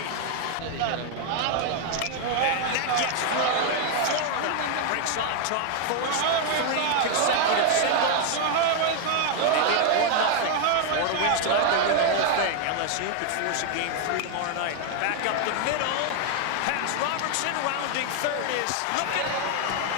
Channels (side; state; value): both; different; correlation 0.00